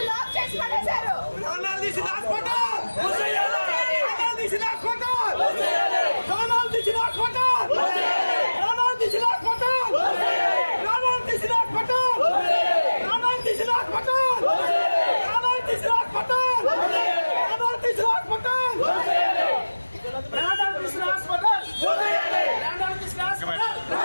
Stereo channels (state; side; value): inverted; both; correlation -1.00